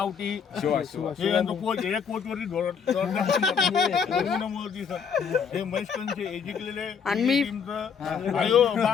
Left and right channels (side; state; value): right; quieter; 6.6 dB